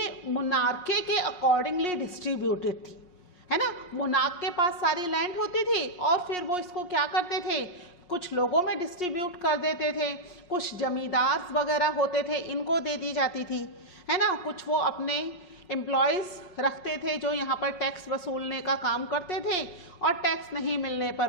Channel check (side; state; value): right; late; 5.5 ms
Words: मोनार्के के अकॉर्डिंगली डिस्ट्रीब्यूटेड थी, है ना। मोनार्क के पास सारी लैंड होती थी और फिर वो इसको क्या करते थे, कुछ लोगों में डिस्ट्रीब्यूट कर देते थे, कुछ जमींदार वगैरह होते थे इनको दे दी जाती थी, है ना। कुछ वो अपने एम्प्लॉयज़ रखते थे जो यहाँ पर टैक्स वसूलने का काम करते थे और टैक्स नहीं मिलने